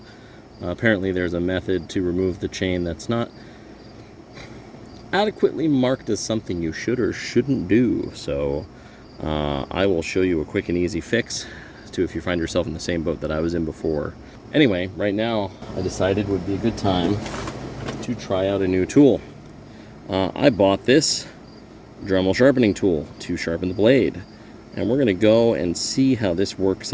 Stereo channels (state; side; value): identical; both; correlation 1.00